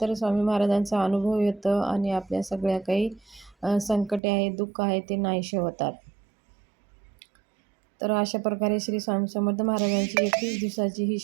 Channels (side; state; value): left; drops out; at 4.2 s